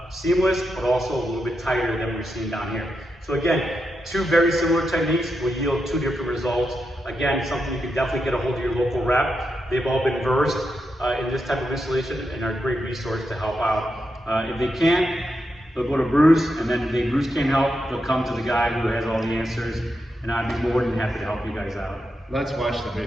seamless, but also a little bit tighter than we're seeing down here. So again, 2 very similar techniques will yield 2 different results. Again, something you can definitely get a hold of your local rep. They've all been versed in this type of installation and are a great resource to help out. If they can't, they'll go to Bruce, and then if Bruce can't help, they'll come to the guy who has all the answers, and I'd be more than happy to help you guys out. Let's watch the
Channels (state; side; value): normal; both; correlation 0.85